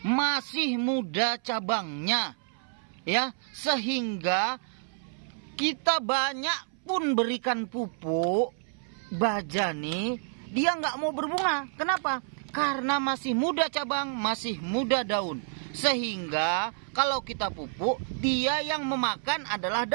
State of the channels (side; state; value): left; silent; 59 dB below the other